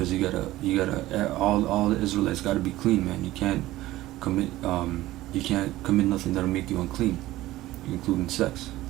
all the Israelites gotta be clean, man. Commit you can't commit nothing that'll make you unclean, including sex,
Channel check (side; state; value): left; quieter; 16.5 dB